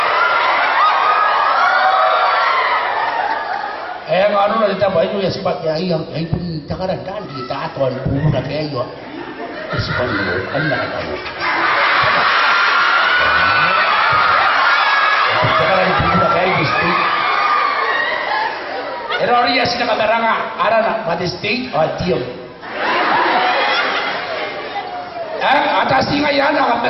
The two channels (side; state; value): both; identical; correlation 1.00